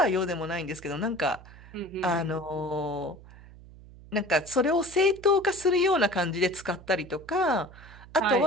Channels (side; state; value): right; noise; hum, 20 dB below the sound